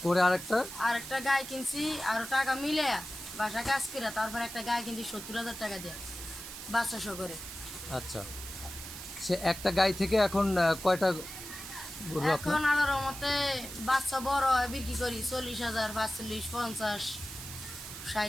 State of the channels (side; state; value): right; noise; hiss, 10 dB below the sound